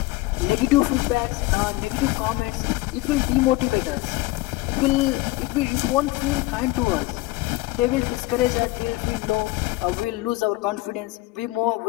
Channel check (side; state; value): right; quieter; 20.0 dB